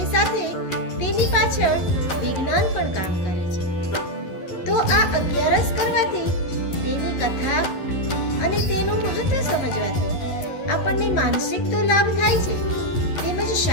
સાથે તેની પાછળ વિજ્ઞાન પણ કામ કરે છે. તો આ અગિયારસ કરવાથી, તેની કથા અને તેનું મહત્વ સમજવાથી આપણને માનસિક તો લાભ થાય છે, તેમજ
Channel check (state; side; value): late; right; 11 ms